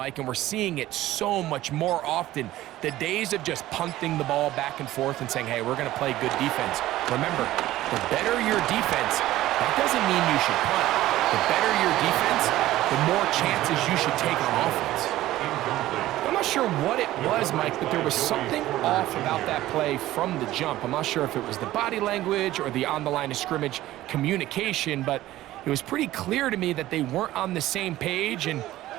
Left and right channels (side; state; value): left; quieter; 15.3 dB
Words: and we're seeing it so much more often. The days of just punting the ball back and forth and saying, hey, we're going to play good defense. Remember, the better your defense, that doesn't mean you should punt. The better your defense, the more chances you should take on offense. I'm not sure what it was, Mike, but there was something off about that play from the jump. I'm not sure if it was the body language or the on-the-line of scrimmage communication, but it was pretty clear to me that they weren't on the same page, and